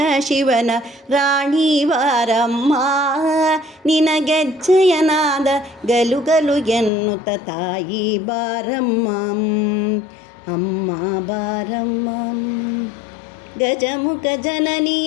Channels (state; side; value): drops out; right; at 6.9 s